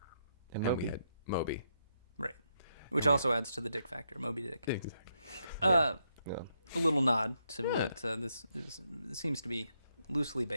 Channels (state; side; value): inverted; both; correlation -0.79